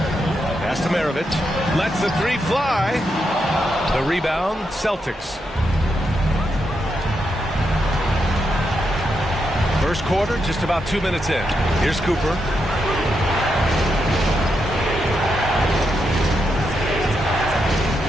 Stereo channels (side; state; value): both; normal; correlation 0.83